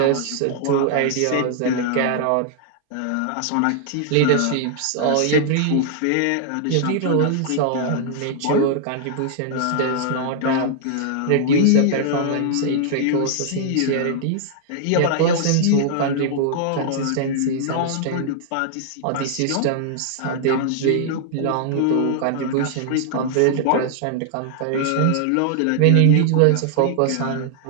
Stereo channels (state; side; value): different; both; correlation -0.01